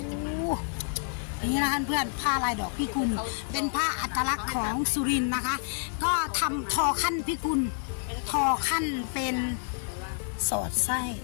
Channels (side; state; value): right; silent; digital silence